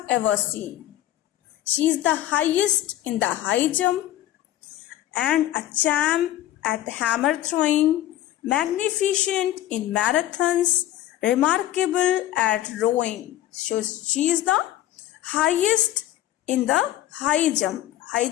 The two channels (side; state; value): right; quieter; 13.6 dB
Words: ever seen. She is the highest in the high jump and a champ at hammer throwing, magnificent in marathons, remarkable at rowing. So she is the highest in the high jump. High